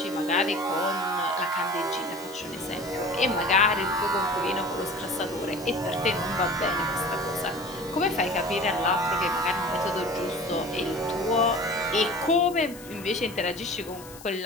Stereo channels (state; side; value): noise; left; hiss, 18 dB below the sound